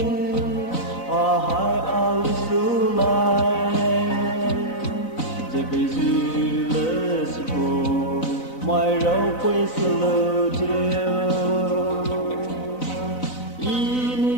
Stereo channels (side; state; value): right; late; 4.0 ms